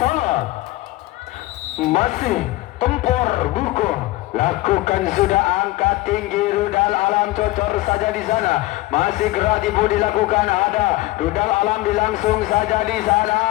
Masih Tempor buko lakukan sudah, angka tinggi rudal alam cocor saja di sana, masih gerak tipu dilakukan. Ada rudal alam dilangsung saja di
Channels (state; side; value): quieter; right; 18.9 dB